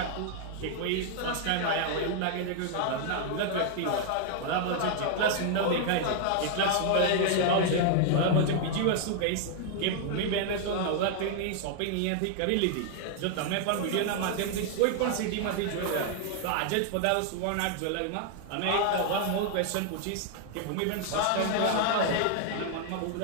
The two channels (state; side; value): different; both; correlation 0.00